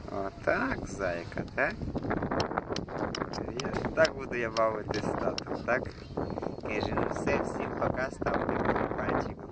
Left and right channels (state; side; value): identical; both; correlation 1.00